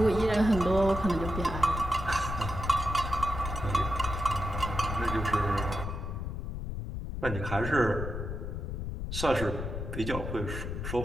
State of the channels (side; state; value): left; noise; rumble, 5 dB below the sound